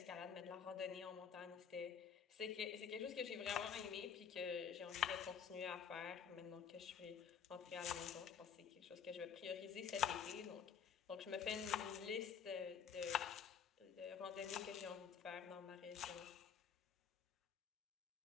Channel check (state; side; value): quieter; right; 7.5 dB